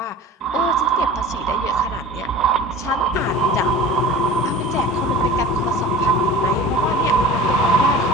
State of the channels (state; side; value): normal; both; correlation 0.39